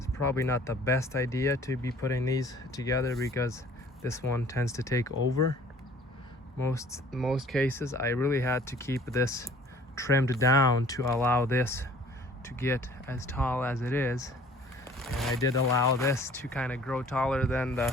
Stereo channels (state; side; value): normal; both; correlation 0.52